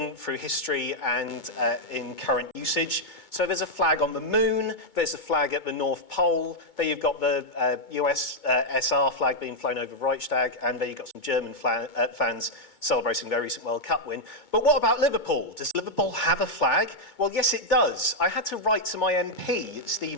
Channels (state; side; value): late; right; 2.2 ms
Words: through history and in current usage. So there's a flag on the moon, there's a flag at the North Pole, there you've got the US SR flag being flown over Reichstag, and there you've got some German fans celebrating their recent World Cup win. But what about Liverpool? Does Liverpool have a flag? Well, yes, it does. I had to write to my MP,